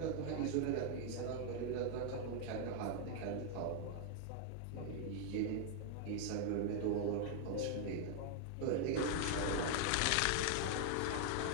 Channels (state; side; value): different; both; correlation 0.00